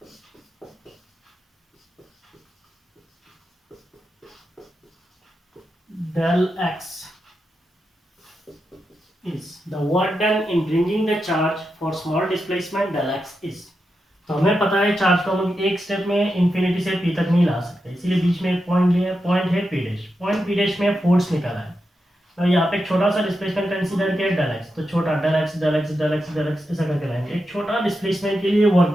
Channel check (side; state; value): both; normal; correlation 0.88